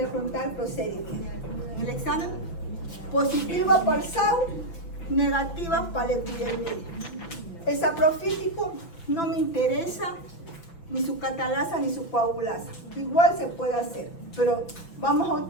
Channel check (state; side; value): late; right; 6.0 ms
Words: voy a preguntar procedimiento. En el examen, positiva para el SAU, negativa para el epidermidis. El saprofítico no me interesa ni su catalasa ni su coagulasa. Igual se puede hacer, pero vamos a